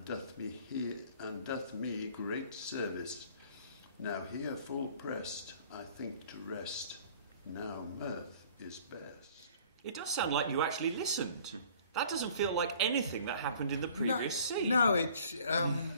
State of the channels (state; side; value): inverted; both; correlation -0.52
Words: doth me great service. Now here full pressed, I think to rest. Now mirth is best. It does sound like you actually listened. That doesn't feel like anything that happened in the previous scene. No, it's...